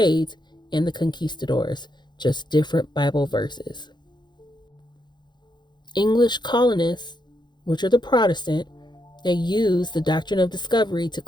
and the conquistadors, just different Bible verses. English colonists, which are the Protestant, they use the doctrine of discovery to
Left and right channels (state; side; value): late; right; 0.21 ms